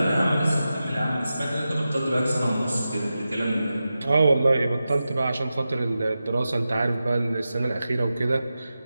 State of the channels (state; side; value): inverted; both; correlation -0.92